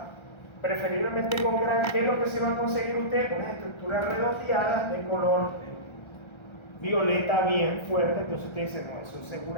preferiblemente con Gram, ¿qué es lo que se va a conseguir usted? Unas estructuras redondeadas de color violeta bien fuerte. Entonces usted dice, no, eso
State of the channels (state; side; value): late; right; 1.3 ms